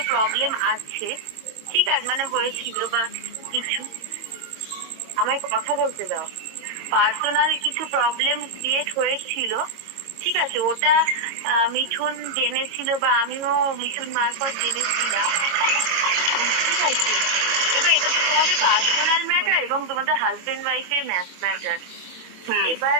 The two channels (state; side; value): late; left; 22 ms